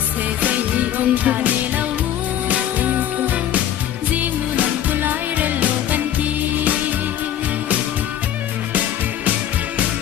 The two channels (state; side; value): quieter; right; 11.0 dB